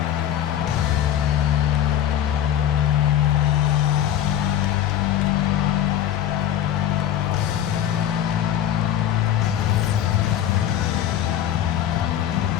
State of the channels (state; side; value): quieter; right; 10.8 dB